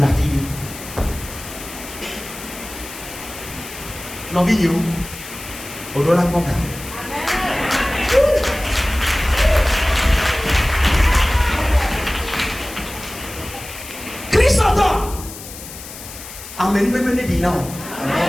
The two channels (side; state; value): left; noise; hiss, 13 dB below the sound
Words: fille. Non, vidéo, on doit la comprendre. Christ entend. Amen. Amen.